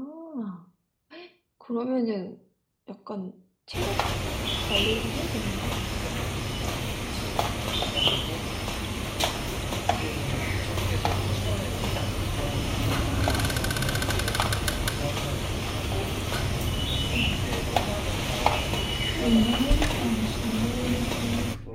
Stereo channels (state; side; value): identical; both; correlation 1.00